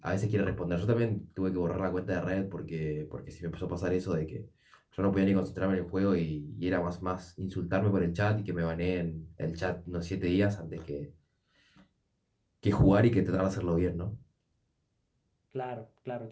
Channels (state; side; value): identical; both; correlation 1.00